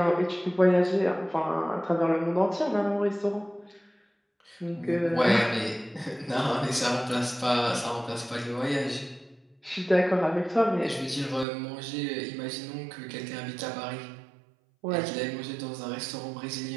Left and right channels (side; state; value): left; drops out; at 11.5 s